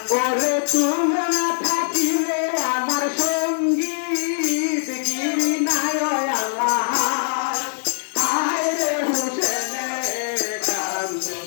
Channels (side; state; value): right; silent; 64 dB below the other